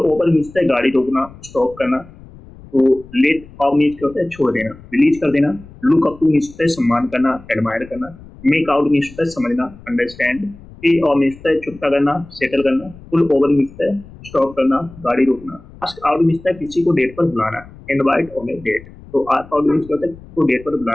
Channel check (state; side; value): noise; left; rumble, 20 dB below the sound